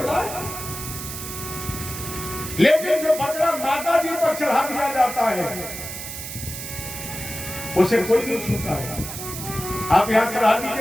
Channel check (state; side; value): noise; right; hiss, 8 dB below the sound